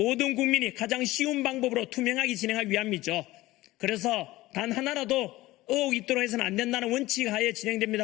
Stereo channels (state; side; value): quieter; right; 18.0 dB